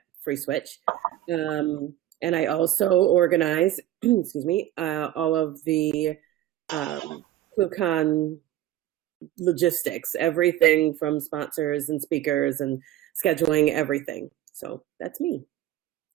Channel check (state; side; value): quieter; left; 13.2 dB